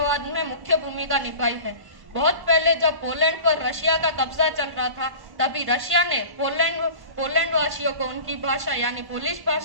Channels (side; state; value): left; late; 1.1 ms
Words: में मुख्य भूमिका निभाई है। बहुत पहले जब पोलैंड पर रशिया का कब्जा चल रहा था, तभी रशिया ने पोलैंड वासियों को उनकी भाषा यानी पोलिश